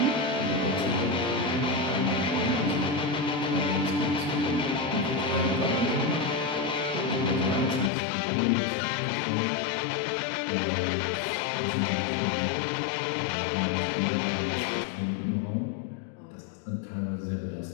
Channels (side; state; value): right; drops out; at 7.9 s